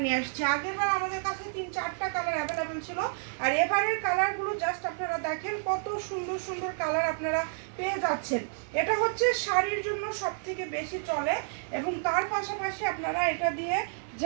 নিয়ে আসছি। আগের বার আমাদের কাছে 3-4টা কালার অ্যাভেলেবেল ছিল, আর এবারের কালারগুলো জাস্ট আপনারা দেখেন কত সুন্দর সুন্দর কালার আপনারা পেয়ে যাচ্ছেন। এটা হচ্ছে শাড়ির জন্য সব থেকে বেশি চলে এবং তার পাশাপাশি আপনারা এটা দিয়ে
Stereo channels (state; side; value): silent; left; 58 dB below the other